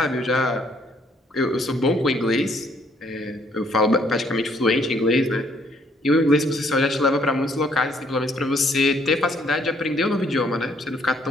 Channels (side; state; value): both; normal; correlation 0.67